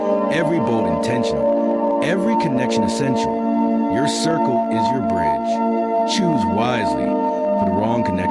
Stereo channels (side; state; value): both; identical; correlation 1.00